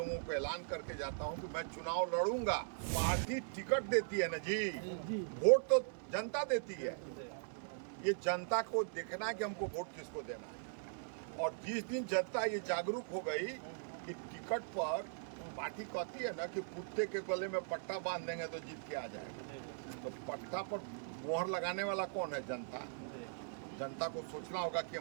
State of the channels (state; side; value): silent; left; digital silence